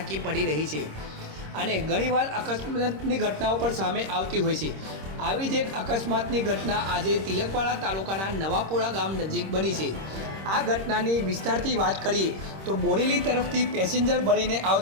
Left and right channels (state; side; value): late; left; 26 ms